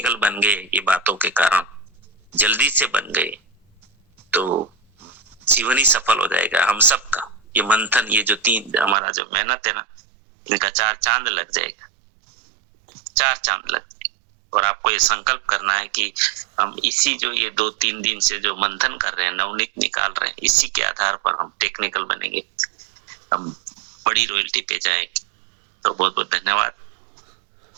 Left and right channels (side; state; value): left; drops out; at 9.0 s